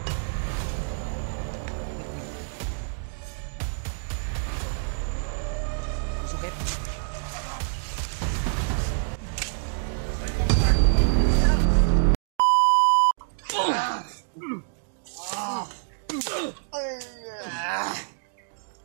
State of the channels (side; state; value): left; silent; digital silence